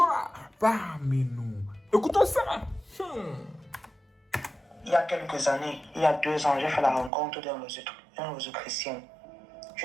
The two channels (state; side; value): drops out; left; at 7.1 s